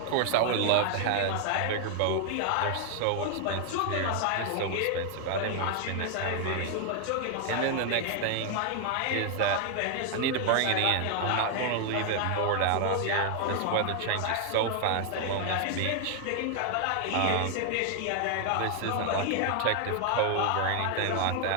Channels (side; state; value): both; different; correlation 0.00